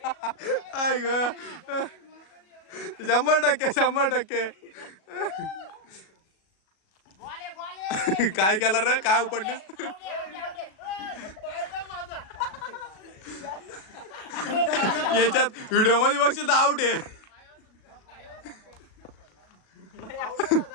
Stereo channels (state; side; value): late; right; 37 ms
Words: आय ग 100%. काय केलं रे? काय उपडलीस? याच्यात व्हिडिओ मध्ये बघशील तर आउट आहे.